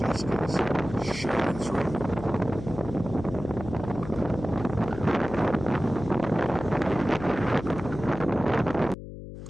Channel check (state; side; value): noise; left; hum, 11 dB below the sound